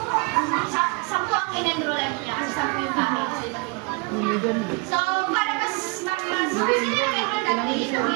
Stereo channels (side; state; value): left; quieter; 29.4 dB